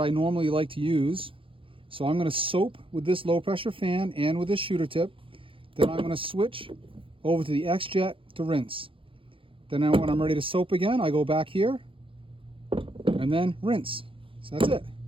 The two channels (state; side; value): late; left; 0.25 ms